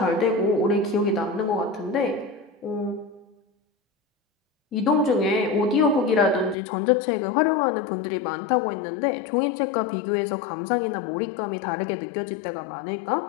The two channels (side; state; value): right; drops out; at 6.6 s